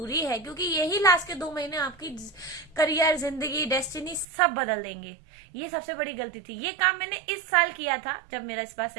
है, क्योंकि यही लास्ट के 2 महीने आपकी करियर, जिंदगी, डेस्टिनी सब बदल देंगे। ये सबसे बड़ी गलती थी। ये काम मैंने इस साल किया था जब मेरा इस बार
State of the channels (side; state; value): left; drops out; at 4.2 s